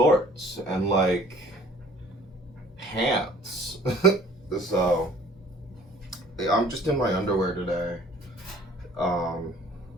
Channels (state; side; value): normal; both; correlation 0.52